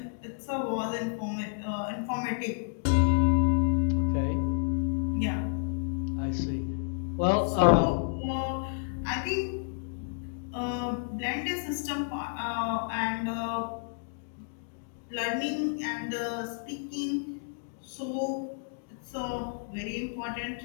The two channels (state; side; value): silent; right; digital silence